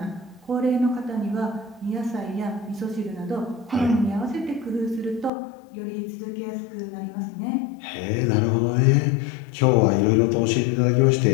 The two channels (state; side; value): drops out; right; at 5.3 s